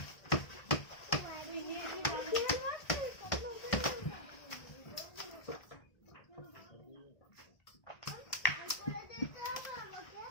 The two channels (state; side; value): late; right; 1.4 ms